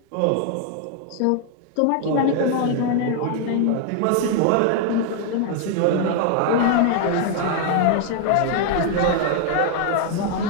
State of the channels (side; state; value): both; different; correlation 0.00